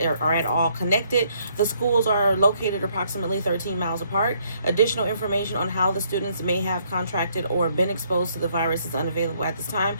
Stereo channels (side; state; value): both; inverted; correlation -0.69